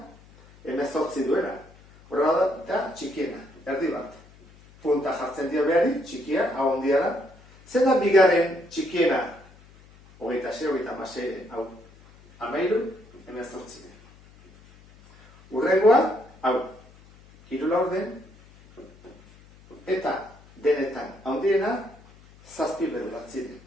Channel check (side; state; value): left; noise; hum, 25 dB below the sound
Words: Hemezortzi duena. Horren da txikiena, erdi bat. Punta jartzen dio behari, txikia, hau ondia da. Zein da bigarren txikiena? Hogeita sei, hogeita hamasei, hau. Hamairu, hemezortzi. Hurrengoa, hau. Hiru laurden. Eta denetan handiena, zazpi bederatzi.